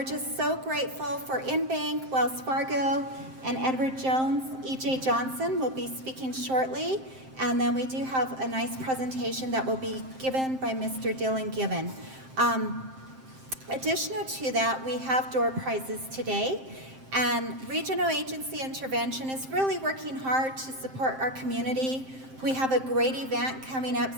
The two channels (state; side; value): late; left; 7.6 ms